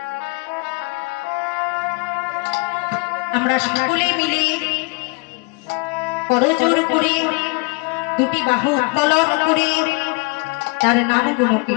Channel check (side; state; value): right; quieter; 29.7 dB